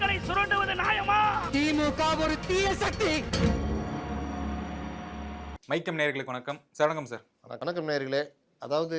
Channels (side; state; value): both; identical; correlation 1.00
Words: சுரண்டுவது நியாயமா? திமுக ஒரு தீய சக்தி. மைக்கம் நேயர்களுக்கு வணக்கம். வணக்கம் சார். வணக்கம் நேயர்களே. அதாவது